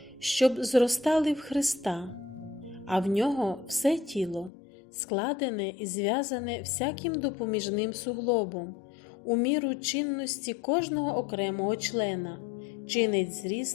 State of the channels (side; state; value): right; drops out; at 4.5 s